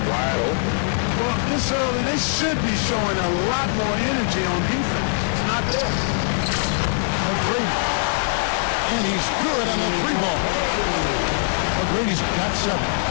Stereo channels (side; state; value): right; silent; digital silence